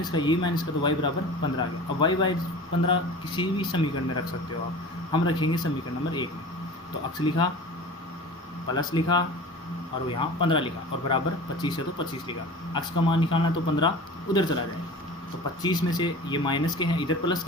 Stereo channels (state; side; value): normal; both; correlation 0.37